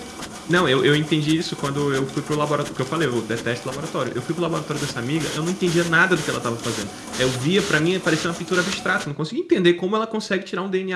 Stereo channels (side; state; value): both; identical; correlation 1.00